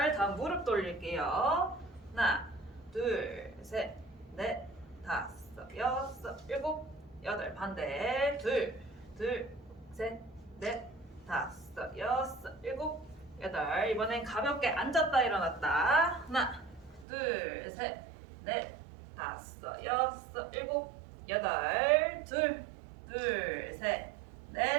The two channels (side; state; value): left; drops out; at 17.1 s